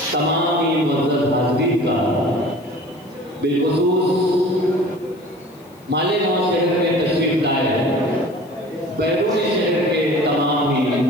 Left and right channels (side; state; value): left; noise; hiss, 30 dB below the sound